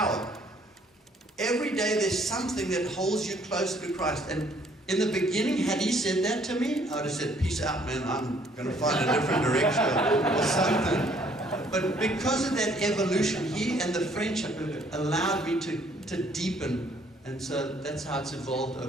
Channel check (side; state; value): both; normal; correlation 0.62